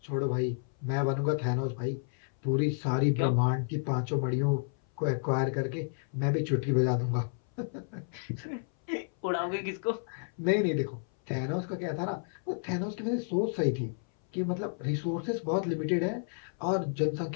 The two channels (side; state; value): right; silent; 57 dB below the other